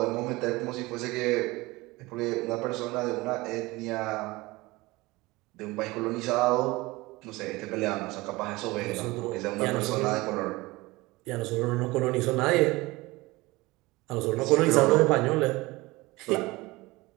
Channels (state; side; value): quieter; left; 21.5 dB